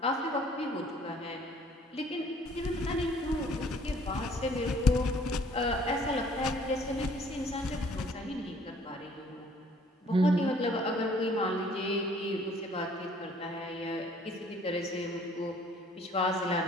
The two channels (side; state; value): both; normal; correlation 0.58